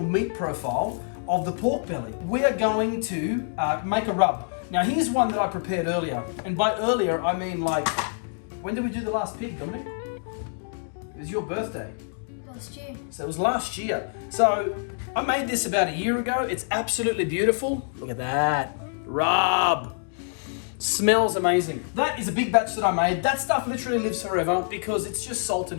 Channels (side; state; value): right; silent; digital silence